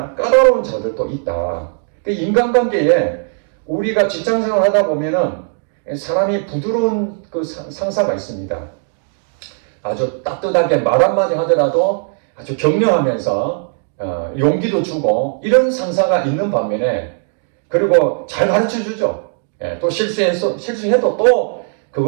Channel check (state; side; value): silent; left; 62 dB below the other